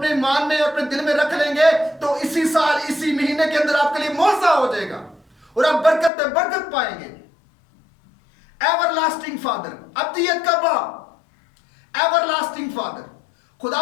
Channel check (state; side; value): drops out; right; at 6.1 s